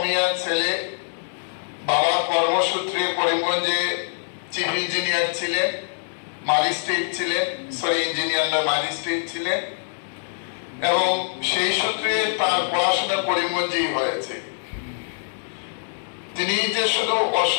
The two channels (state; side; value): silent; right; 63 dB below the other